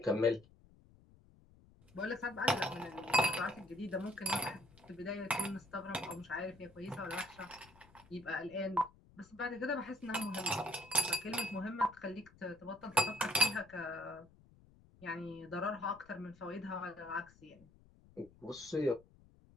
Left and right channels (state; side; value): noise; left; rumble, 25 dB below the sound